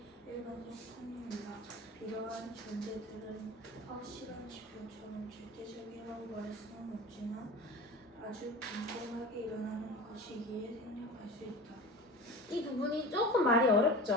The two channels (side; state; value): both; normal; correlation 0.34